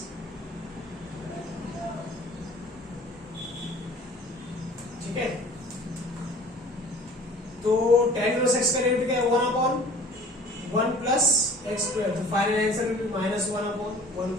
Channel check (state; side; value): normal; both; correlation 0.47